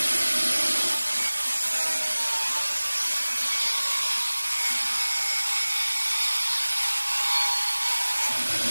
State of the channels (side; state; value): both; inverted; correlation -1.00